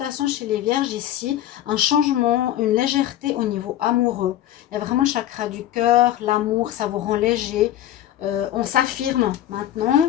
chez les vierges ici, un changement, une légèreté au niveau amoureux. Il y a vraiment le chakra du cœur, l'amour, ça vous rend léger. On s'affirme maintenant.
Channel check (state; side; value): quieter; right; 12.6 dB